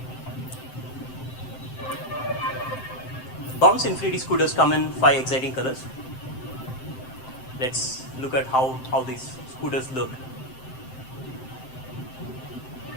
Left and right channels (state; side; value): late; right; 7.7 ms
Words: Bounce Infinity scooters come in 5 exciting colors. Let's look at how these scooters look.